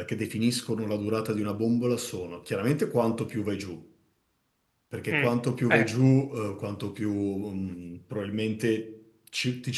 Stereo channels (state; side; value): identical; both; correlation 1.00